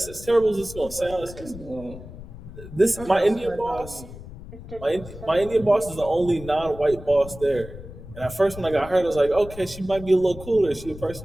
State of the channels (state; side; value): noise; left; rumble, 14 dB below the sound